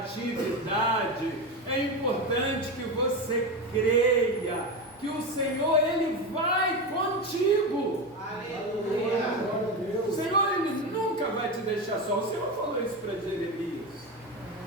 é importante que você creia que o Senhor, Ele vai contigo. Aleluia! O Senhor, Ele nunca vai te deixar só. O Senhor falou isso para Jeremias.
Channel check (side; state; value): both; normal; correlation 0.18